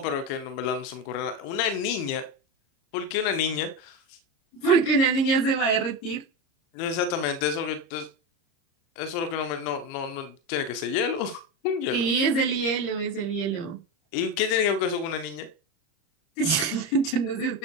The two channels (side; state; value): right; late; 30 ms